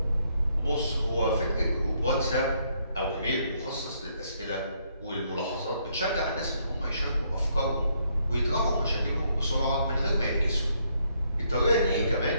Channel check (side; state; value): both; inverted; correlation -0.72